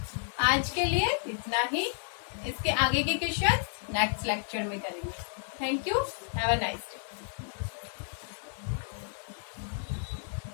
आज के लिए इतना ही। इसके आगे के क्वेश्चन नेक्स्ट लेक्चर में करेंगे। Thank you, have a nice day.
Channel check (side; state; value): right; silent; 57 dB below the other